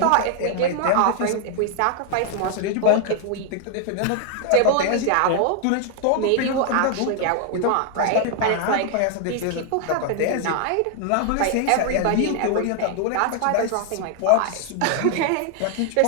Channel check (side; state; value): both; different; correlation 0.00